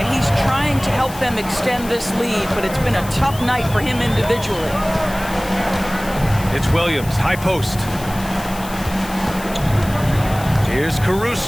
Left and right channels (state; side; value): noise; left; hiss, 15 dB below the sound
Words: he's trying to help them extend this lead, but it's been a tough night for him individually. It's Williams, high post. Here's